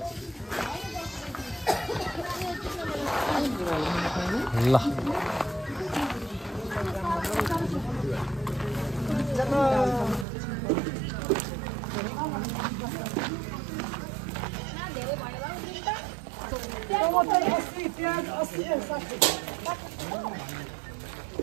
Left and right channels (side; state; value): left; drops out; at 10.2 s